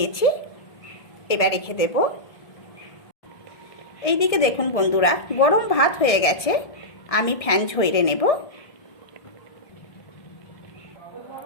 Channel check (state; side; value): late; right; 1.7 ms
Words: এবার রেখে দেব। এইদিকে দেখুন বন্ধুরা, গরম ভাত হয়ে গেছে, আমি ফ্যান ঝরিয়ে নেব।